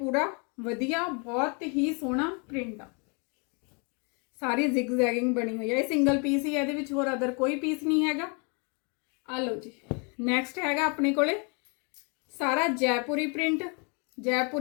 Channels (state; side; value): quieter; right; 34.6 dB